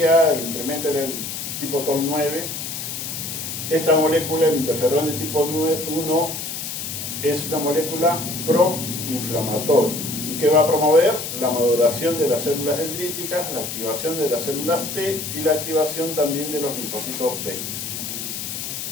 el incremento era el tipo TOL9. Esta molécula, el interferón de tipo 1, es una molécula proinflamatoria. ¿Y qué va a promover? La maduración de las células dendríticas, la activación de las células T y la activación también de los linfocitos B.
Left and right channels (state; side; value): noise; left; hiss, 6 dB below the sound